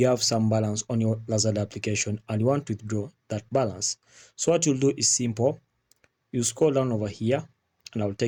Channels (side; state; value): both; identical; correlation 1.00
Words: have some balance on your Lazada application and you want to withdraw that balance, so what you'll do is simple. You scroll down over here and I'll